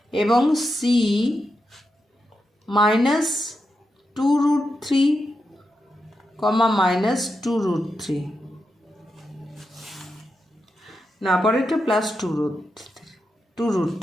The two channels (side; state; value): both; normal; correlation 0.87